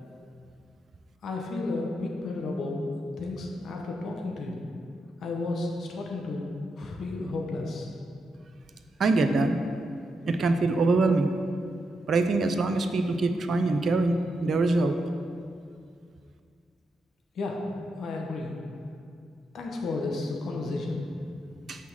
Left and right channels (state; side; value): normal; both; correlation 0.84